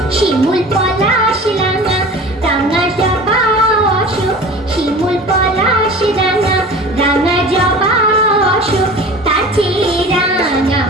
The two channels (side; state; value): both; normal; correlation 0.39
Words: শিমুল পলাশ রাঙা, রাঙা জবা অশোক, শিমুল পলাশ রাঙা, রাঙা জবা অশোক, তার চেয়ে রাঙা